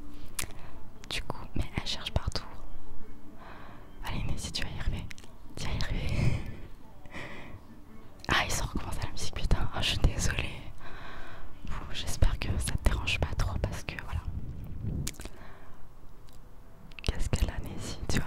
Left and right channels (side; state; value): both; identical; correlation 1.00